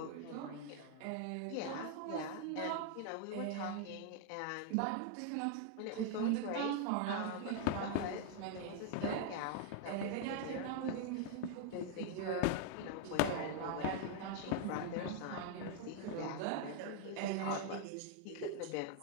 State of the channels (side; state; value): both; different; correlation 0.00